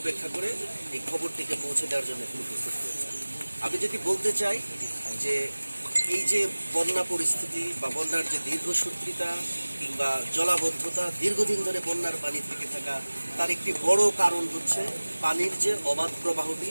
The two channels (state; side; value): inverted; both; correlation -1.00